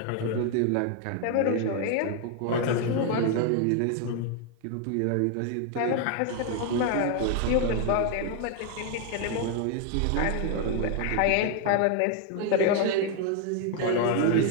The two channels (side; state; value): both; different; correlation 0.00